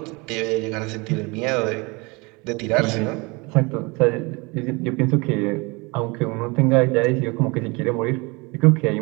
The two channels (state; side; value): quieter; left; 27.0 dB